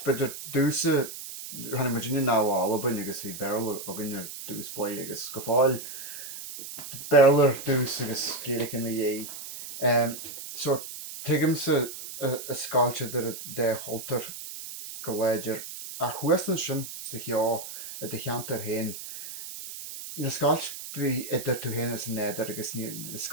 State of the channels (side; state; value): right; noise; hiss, 10 dB below the sound